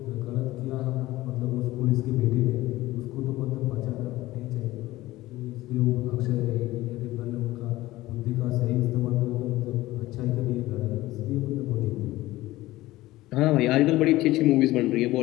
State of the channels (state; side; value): quieter; right; 17.5 dB